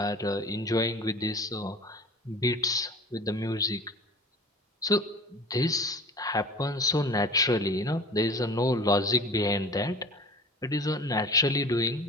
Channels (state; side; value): normal; both; correlation 0.39